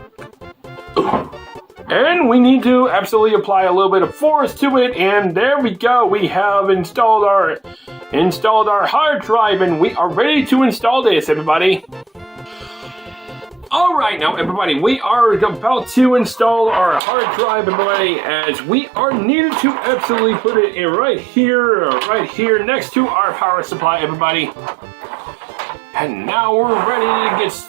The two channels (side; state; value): left; drops out; at 17.0 s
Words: and we need to absolutely apply a little bit of force to it, and there we go. We have installed our hard drive, and we are ready to install this, everybody. Alright now everybody, we are about to install our hard drive, everybody, as we are needed to absolutely put it in right here next to our power supply, everybody. And now we're ready to get